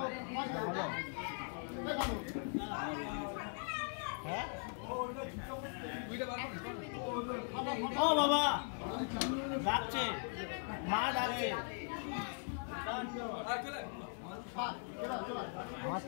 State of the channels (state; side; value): silent; right; 51 dB below the other